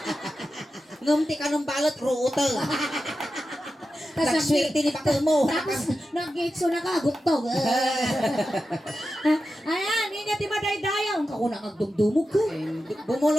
Ngumti ka ng balot, ruuto. Tas Nagswerte ni bakal mo. Tapos nag-gitso na ka, guktog. Ayan, ingat ti maday-dayaw. Ang kakuna agdumdumog ko.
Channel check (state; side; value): normal; both; correlation 0.91